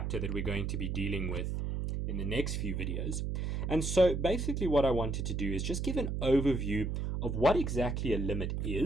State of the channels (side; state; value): right; noise; hum, 1 dB below the sound